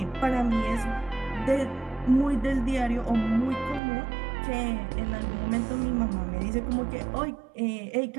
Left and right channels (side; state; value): left; drops out; at 3.8 s